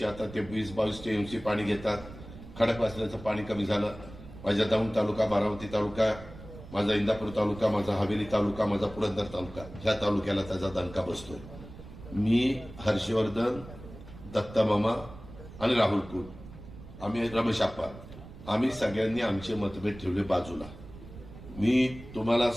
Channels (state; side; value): noise; right; rumble, 15 dB below the sound